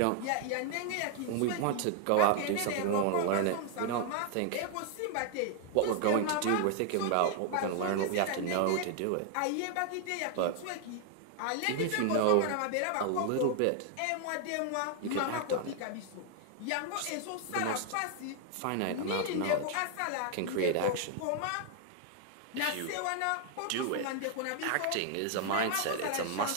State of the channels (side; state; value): both; different; correlation 0.00